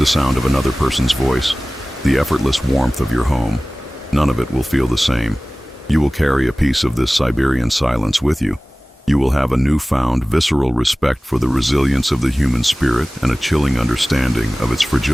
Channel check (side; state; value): both; normal; correlation 0.98